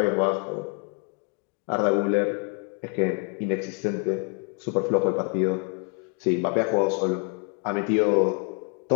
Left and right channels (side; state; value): right; quieter; 34.4 dB